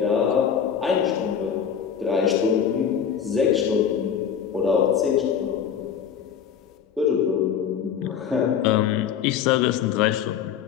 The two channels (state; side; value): quieter; right; 8.0 dB